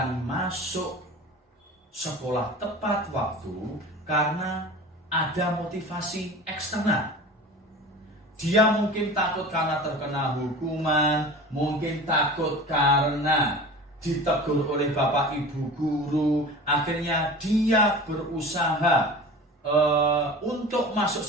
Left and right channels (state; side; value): normal; both; correlation 0.36